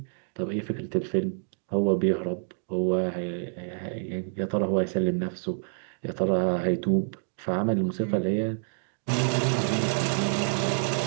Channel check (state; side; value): silent; left; digital silence